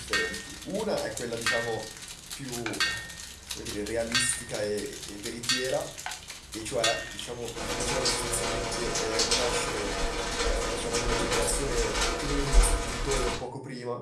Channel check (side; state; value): both; identical; correlation 1.00